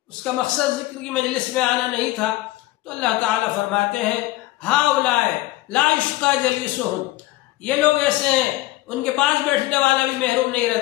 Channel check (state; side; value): quieter; right; 17.7 dB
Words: اس کا مقصد ذکر کی مجلس میں آنا نہیں تھا، تو اللہ تعالیٰ فرماتے ہیں ہاؤلائے لا یشقى جلیسہم، یہ لوگ ایسے ہیں ان کے پاس بیٹھنے والا بھی محروم نہیں